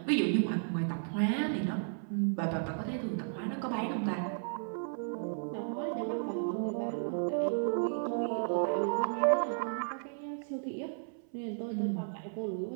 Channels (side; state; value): left; silent; 55 dB below the other